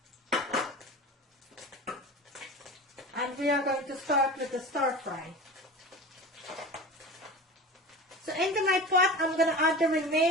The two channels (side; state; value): both; normal; correlation 0.33